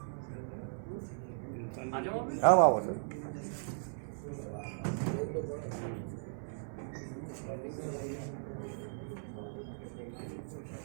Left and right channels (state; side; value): silent; left; 53 dB below the other